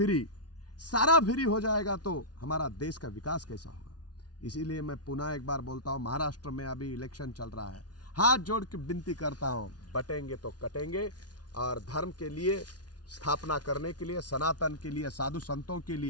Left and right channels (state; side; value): late; right; 0.69 ms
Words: सारा फ्री हो जाएगा तो हमारा देश का विकास कैसा होगा। इसीलिए मैं पुनः एक बार बोलता हूँ, महाराष्ट्र में अभी इलेक्शन चल रहा है, हाथ जोड़ के विनती करता हूँ, बटेंगे तो कटेंगे, और धर्म के लिए स्थापना करने के लिए, सनातन के लिए, साधु संतों के